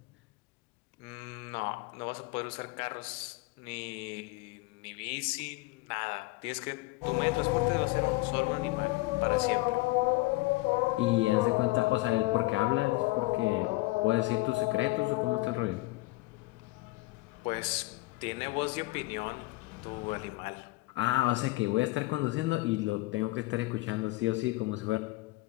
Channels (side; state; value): right; quieter; 21.8 dB